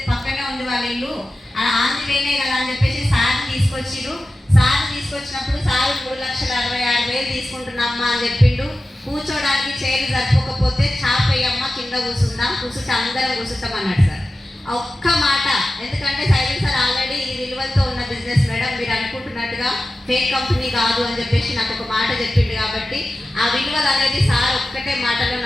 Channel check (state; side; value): normal; both; correlation 0.94